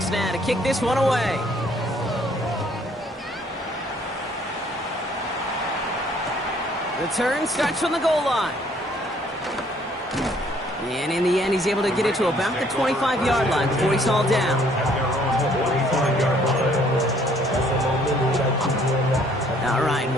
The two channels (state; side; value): normal; both; correlation 0.62